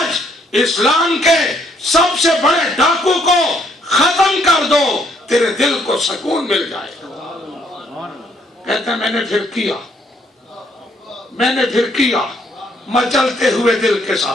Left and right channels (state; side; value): normal; both; correlation 0.69